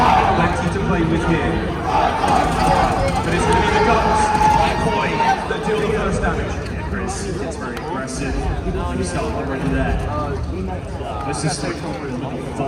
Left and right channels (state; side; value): identical; both; correlation 1.00